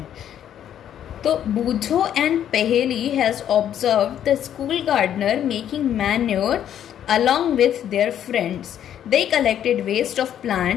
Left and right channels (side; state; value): right; quieter; 10.2 dB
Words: तो Boojho and Paheli has observe the school gardener making manure along with their friends. They collected waste of